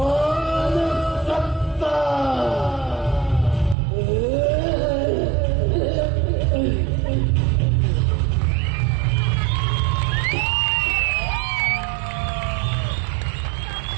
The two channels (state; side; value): drops out; left; at 3.8 s